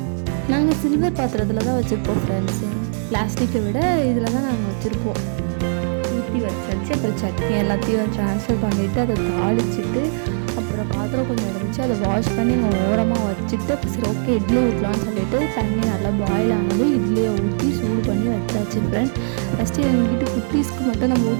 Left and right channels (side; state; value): left; silent; digital silence